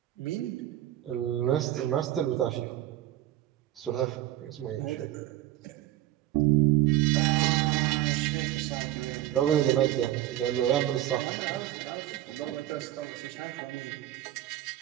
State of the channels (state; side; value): quieter; left; 13.8 dB